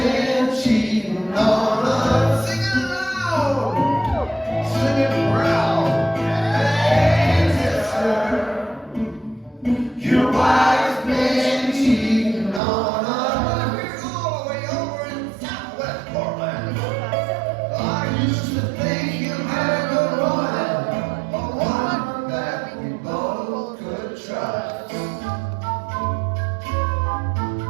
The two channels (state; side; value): drops out; left; at 12.6 s